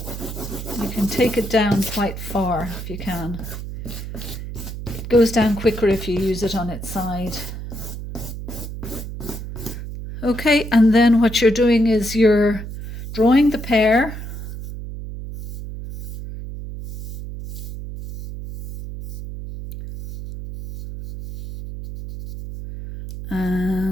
you can take it down quite far if you can. It goes down quicker if you use it on its side. Okay, and then what you're doing is you're drawing the pear.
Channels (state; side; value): noise; right; hum, 9 dB below the sound